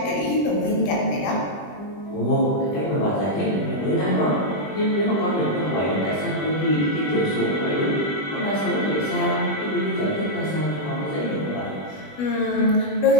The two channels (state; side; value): late; right; 20 ms